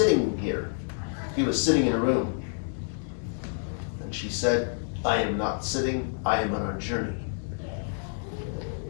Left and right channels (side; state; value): right; silent; digital silence